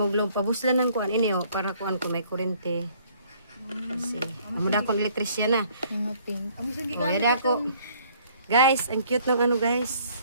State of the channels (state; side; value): inverted; both; correlation -0.60